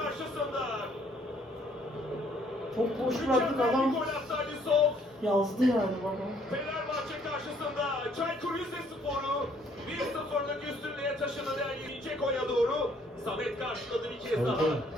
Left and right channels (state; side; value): normal; both; correlation 0.64